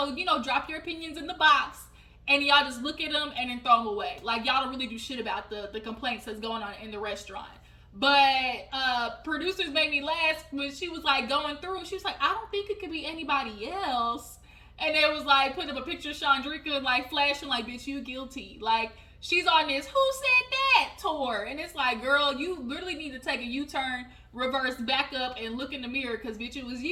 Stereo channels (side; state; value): both; identical; correlation 1.00